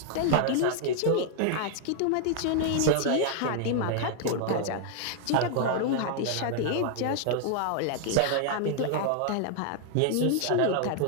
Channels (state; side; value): different; both; correlation 0.00